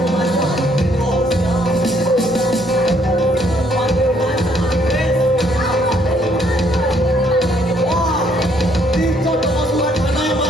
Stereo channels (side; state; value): both; normal; correlation 0.67